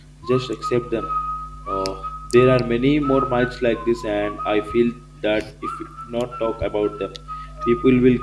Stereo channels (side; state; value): both; identical; correlation 1.00